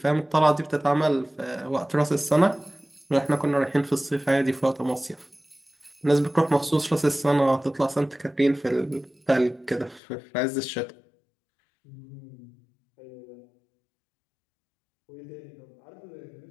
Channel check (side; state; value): right; drops out; at 10.0 s